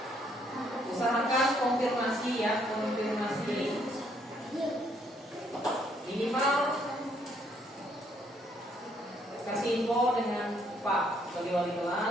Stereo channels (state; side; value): normal; both; correlation 0.69